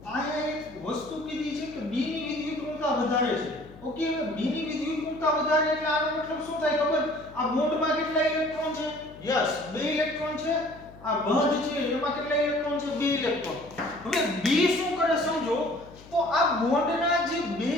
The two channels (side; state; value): left; noise; hum, 20 dB below the sound